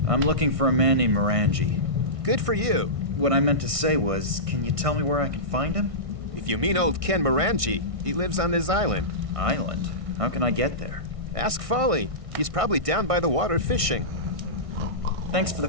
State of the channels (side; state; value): left; late; 1.6 ms